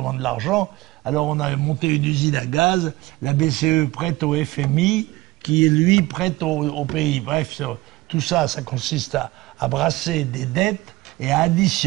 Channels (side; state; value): left; quieter; 19.1 dB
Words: de l'argent. Alors on a monté une usine à gaz, la BCE prête au FMI, qui lui prête au pays. Bref, tout ça, ça consiste à brasser des dettes et à